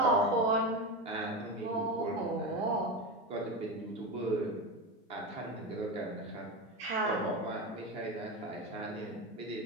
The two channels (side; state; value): both; normal; correlation 0.19